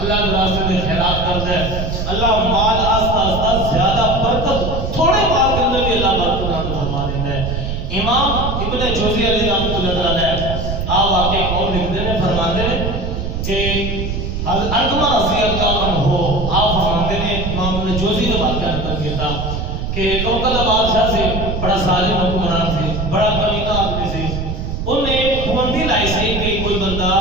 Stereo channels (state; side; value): noise; right; rumble, 3 dB below the sound